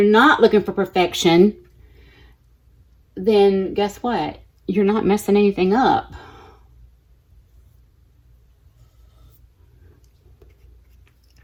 not looking for perfection, then guess what? You're not messing anything up.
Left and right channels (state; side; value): identical; both; correlation 1.00